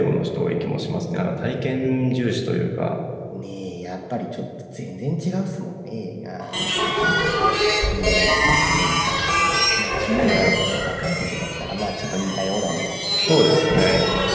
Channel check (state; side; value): identical; both; correlation 1.00